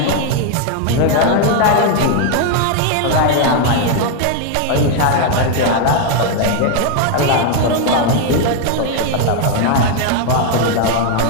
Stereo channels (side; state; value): both; different; correlation 0.00